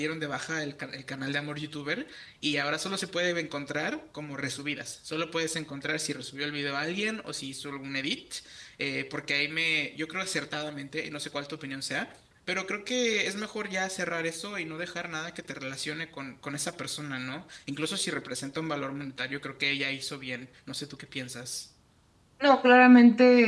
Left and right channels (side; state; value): both; identical; correlation 1.00